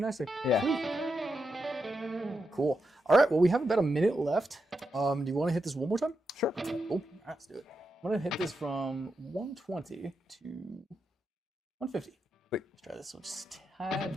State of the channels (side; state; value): both; normal; correlation 0.86